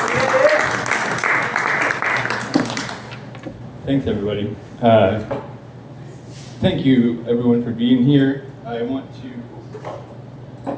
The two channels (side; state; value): both; identical; correlation 1.00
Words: Thanks, everybody. Thank you, everyone, for being here. I want to.